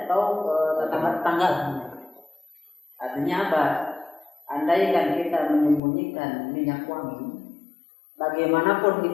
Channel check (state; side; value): drops out; right; at 5.8 s